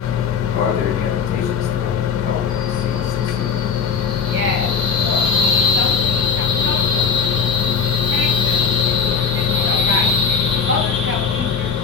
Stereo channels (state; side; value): quieter; right; 6.1 dB